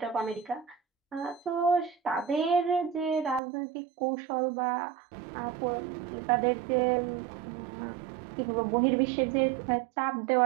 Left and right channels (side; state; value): left; drops out; at 3.4 s